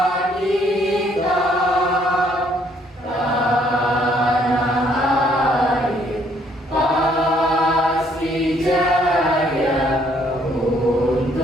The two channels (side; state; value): both; normal; correlation 0.66